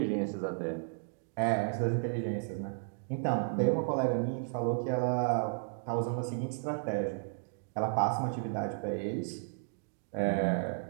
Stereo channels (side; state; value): left; silent; digital silence